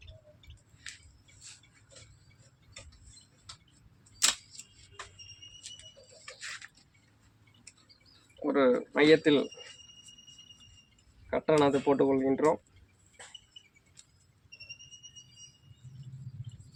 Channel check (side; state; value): both; identical; correlation 1.00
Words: ஒரு மையத்தில் கட்டணத்தை போட்டுக்கொள்கின்றோம்.